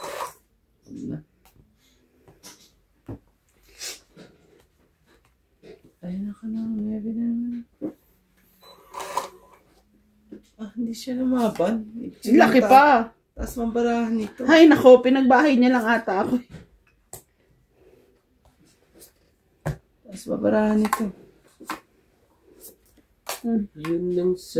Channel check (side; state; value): both; identical; correlation 1.00